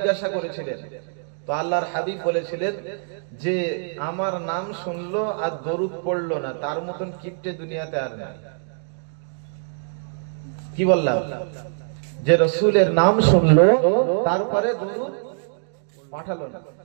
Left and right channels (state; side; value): silent; left; digital silence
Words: করেছিলেন। তো আল্লাহর হাবিব বলেছিলেন যে আমার নাম শুনলো আর দরুদ পড়লো না, তার মতন কিপ্টে দুনিয়াতে আর নাই। কি বললাম? যে রাসূলের নাম শুনলো তারপরে দরুদ পাঠালো না।